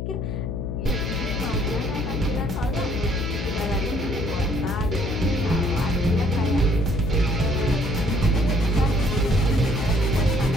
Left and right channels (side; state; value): left; noise; hum, 3 dB below the sound